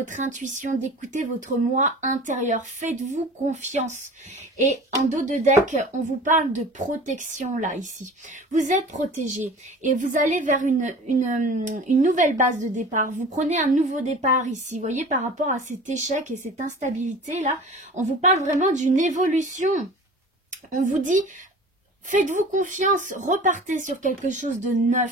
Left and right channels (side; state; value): both; normal; correlation 0.41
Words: intuition, d'écouter votre moi intérieur. Faites-vous confiance. Et en dos de deck, on vous parle de protection là, ici. Vous êtes protégé et vous allez vers une nouvelle base de départ. Vous prenez un nouveau départ ici. Vous voyez, par rapport à cet échec et cette instabilité là, on vous parle vraiment d'une évolution. On vous dit... Faites-vous confiance, repartez sur quelque chose de